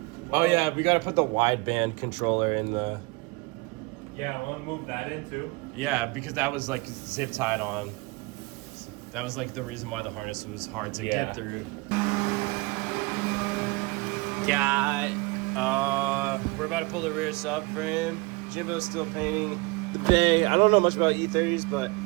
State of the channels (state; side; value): quieter; left; 25.6 dB